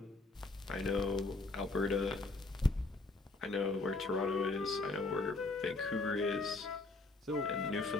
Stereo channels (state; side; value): quieter; right; 3.4 dB